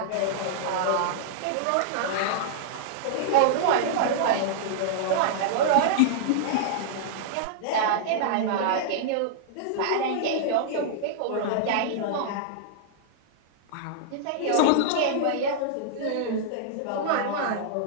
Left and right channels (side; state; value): both; different; correlation -0.02